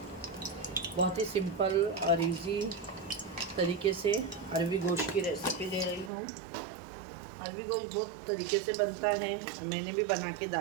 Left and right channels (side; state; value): left; drops out; at 6.1 s